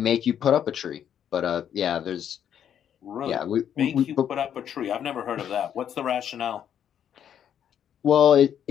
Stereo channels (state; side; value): quieter; right; 9.3 dB